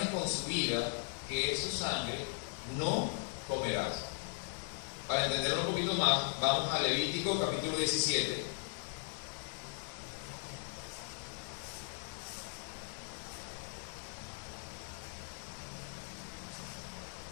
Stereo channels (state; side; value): silent; right; 52 dB below the other